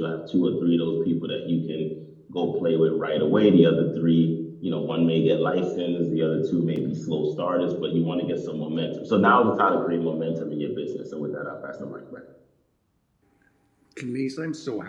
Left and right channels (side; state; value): both; identical; correlation 1.00